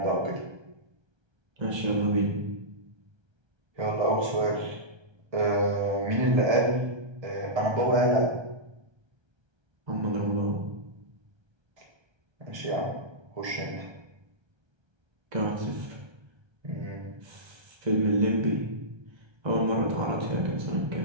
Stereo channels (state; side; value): late; left; 1.3 ms